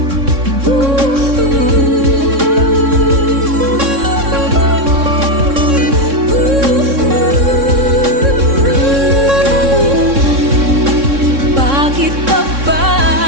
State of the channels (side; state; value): left; late; 3.6 ms